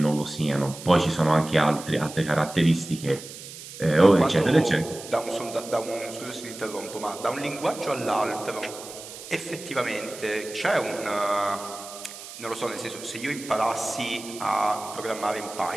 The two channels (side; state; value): right; noise; hiss, 13 dB below the sound